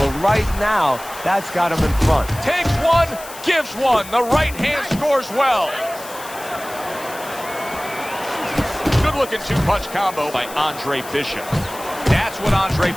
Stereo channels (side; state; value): left; noise; hiss, 15 dB below the sound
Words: right now, that's got him in front. Takes one, gives one. The right hand scores well. Good-looking two-punch combo by Andre Bishop. That's what Andre